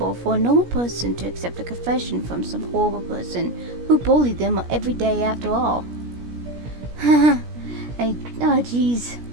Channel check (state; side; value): late; left; 17 ms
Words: for a normal person to accept a confession from some horrible person who bullied them every day after all. Oh jeez.